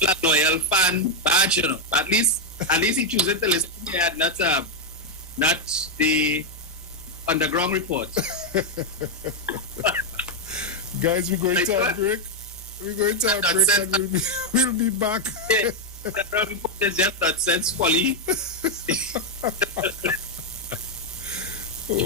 loyal fan, badge, you know. At least he chooses to listen to not the underground report. Guys, we're going to a break. We're going to a break and we'll be back. Yeah, the underground report is just nonsense folly.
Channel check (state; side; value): normal; both; correlation 0.01